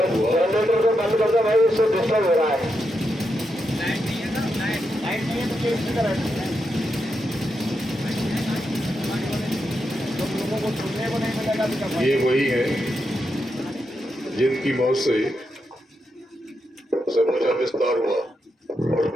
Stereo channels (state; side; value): normal; both; correlation 0.84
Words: हुआ। बंद कर दो भाई, उससे डिस्टर्ब हो रहा है। ये वही है जिनकी मौत से समूचा विस्तार हुआ और